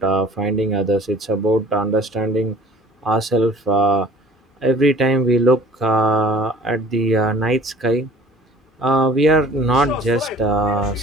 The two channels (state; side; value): normal; both; correlation 0.49